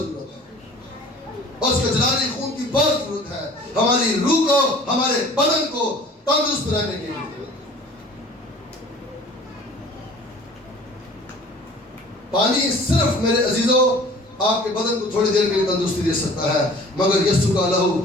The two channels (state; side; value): normal; both; correlation 0.47